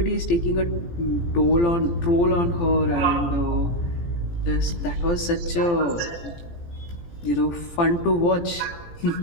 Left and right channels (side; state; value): right; late; 17 ms